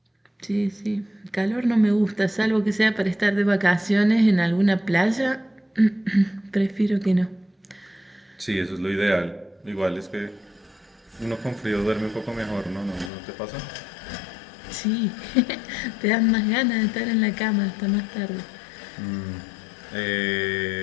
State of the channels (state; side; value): drops out; right; at 13.1 s